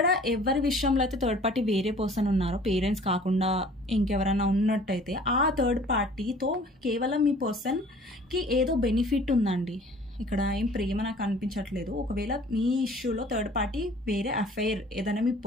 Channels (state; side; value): normal; both; correlation 0.50